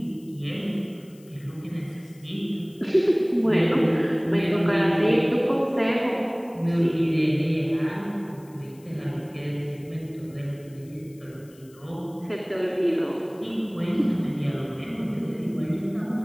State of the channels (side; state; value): left; noise; hiss, 27 dB below the sound